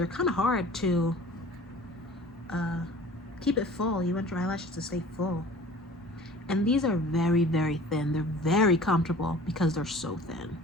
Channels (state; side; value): normal; both; correlation 0.45